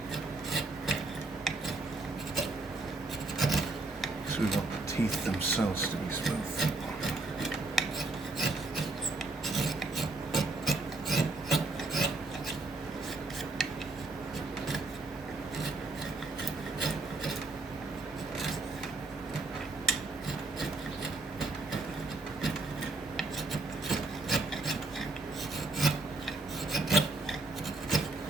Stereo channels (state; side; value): quieter; left; 3.3 dB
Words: So we want the teeth themselves to be smooth.